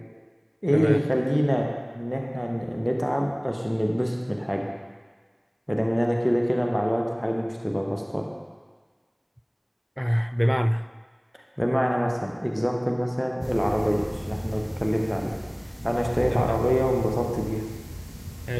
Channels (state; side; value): identical; both; correlation 1.00